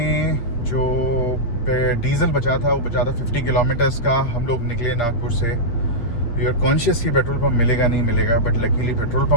जो diesel बचा था वो बचा था 50 kilometres का. हम लोग निकले नागपुर से. वी आर कॉन्शियस कि पेट्रोल पंप मिलेगा नहीं मिलेगा, बट लकीली पेट्रोल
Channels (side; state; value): right; late; 8.5 ms